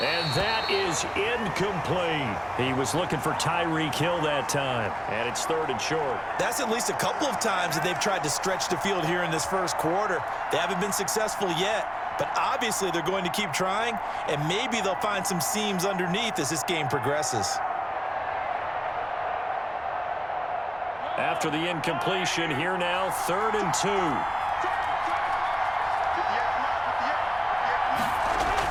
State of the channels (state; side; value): identical; both; correlation 1.00